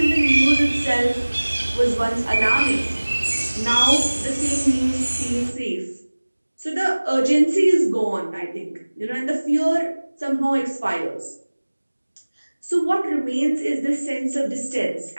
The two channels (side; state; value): both; inverted; correlation -1.00